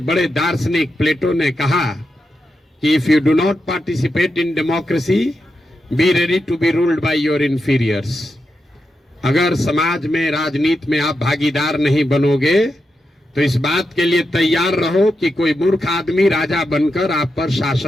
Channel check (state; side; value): normal; both; correlation 0.87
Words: बड़े दार्शनिक प्लेटो ने कहा कि if you do not participate in democracy, be ready to be ruled by your inferiors. अगर समाज में, राजनीति में आप भागीदार नहीं बनोगे तो इस बात के लिए तैयार रहो कि कोई मूर्ख आदमी राजा बनकर आप पर